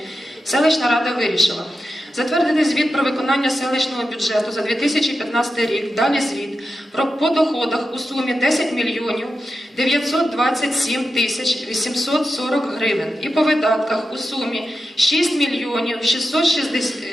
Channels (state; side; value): normal; both; correlation 0.90